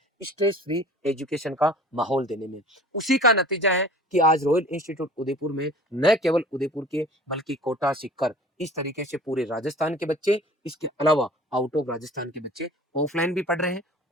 स्ट्रेस फ्री एजुकेशन का माहौल देने में। उसी का नतीजा है कि आज रॉयल इंस्टीट्यूट उदयपुर में न केवल उदयपुर के बल्कि कोटा, सीकर, इस तरीके से पूरे राजस्थान के बच्चे, इसके अलावा आउट ऑफ राजस्थान के बच्चे ऑफलाइन भी पढ़ रहे हैं,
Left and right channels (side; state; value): both; normal; correlation 0.44